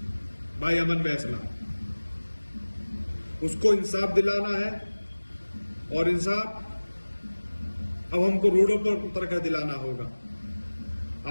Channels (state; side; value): inverted; both; correlation -1.00